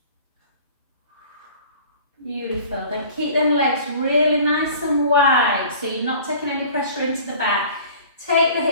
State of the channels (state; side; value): inverted; both; correlation -0.46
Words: Beautiful. Then keep them legs really nice and wide so you're not taking any pressure into the back. Take the